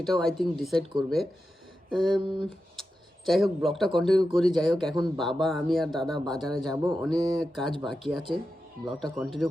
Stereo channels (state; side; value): normal; both; correlation 0.90